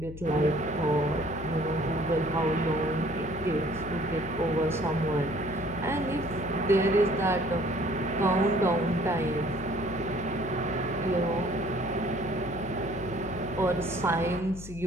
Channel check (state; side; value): noise; left; hum, 13 dB below the sound